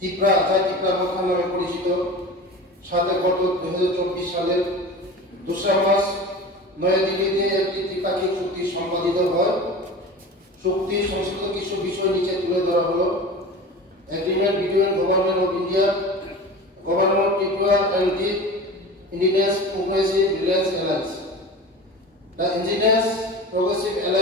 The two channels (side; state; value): both; normal; correlation 0.34